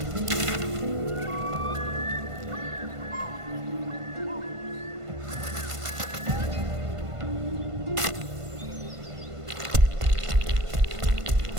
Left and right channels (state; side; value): late; left; 1.5 ms